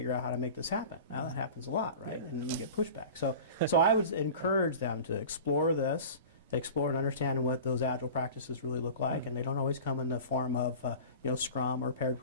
out how to make this happen. Now that happens a lot, right? And you get pushback. So I would encourage them to explore this, explore and understand what those Agile practices really look like, and they don't always come in the form of Scrum or paired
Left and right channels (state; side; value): inverted; both; correlation -0.38